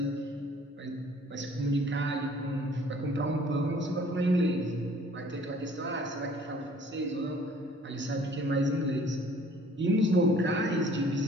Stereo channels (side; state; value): both; normal; correlation 0.55